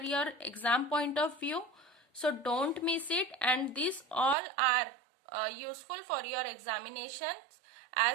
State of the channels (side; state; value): left; drops out; at 4.4 s